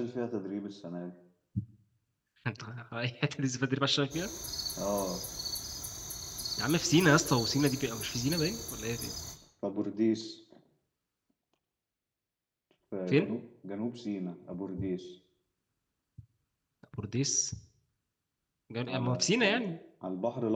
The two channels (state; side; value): identical; both; correlation 1.00